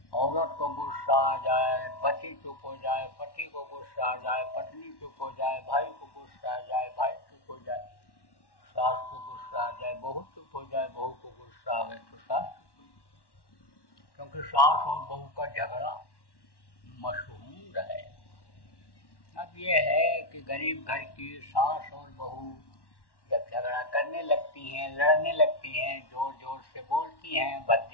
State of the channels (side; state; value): right; late; 1.1 ms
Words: औरत को गुस्सा आ जाए, पति चुप हो जाए, पति को गुस्सा आ जाए, पत्नी चुप हो जाए, भाई को गुस्सा आ जाए, भाई चुप हो जाए, सास को गुस्सा आ जाए, बहू चुप हो जाए, बहू को गुस्सा आ गए तो सास चुप हो जाए। क्योंकि सास और बहू का झगड़ा मशहूर है। अब ये है कि गरीब घर की सास और बहू जब झगड़ा करने लगती हैं, लड़ने लगती हैं, जोर जोर से बोलती हैं,